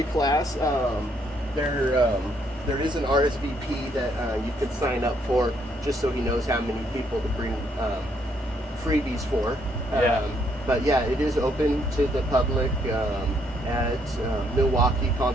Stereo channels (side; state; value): both; normal; correlation 0.71